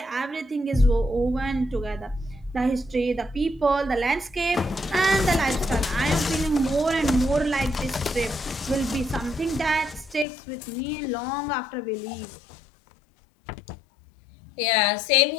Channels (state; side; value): drops out; right; at 10.2 s